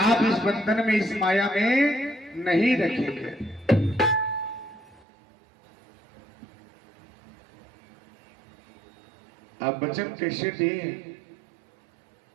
इस बंधन में, इस माया में नहीं रखेंगे। अब वचन कैसे दे?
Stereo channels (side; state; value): left; drops out; at 5.0 s